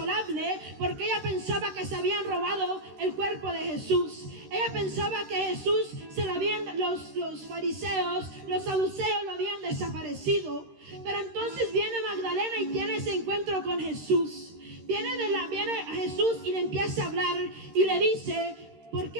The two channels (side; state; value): left; late; 13 ms